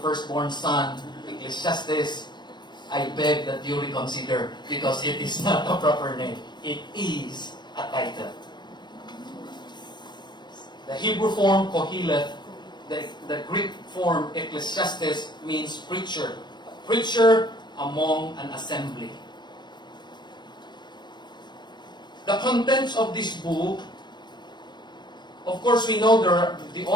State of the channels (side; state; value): right; late; 0.22 ms